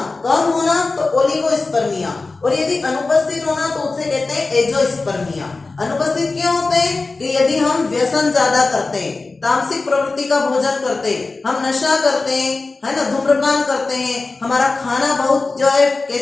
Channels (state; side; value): quieter; right; 3.7 dB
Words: कम होना तो ओलिगोस्पर्मिया, और यदि अनुपस्थित होना तो उसे कहते हैं एजोस्पर्मिया। अनुपस्थित क्यों होते हैं कि यदि हम व्यसन ज्यादा करते हैं, तामसिक प्रवृत्ति का भोजन करते हैं, हम नशा करते हैं, है ना, धूम्रपान करते हैं, हमारा खाना बहुत जो है